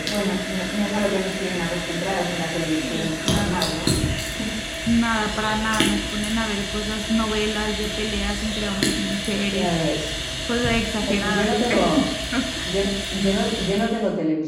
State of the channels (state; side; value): identical; both; correlation 1.00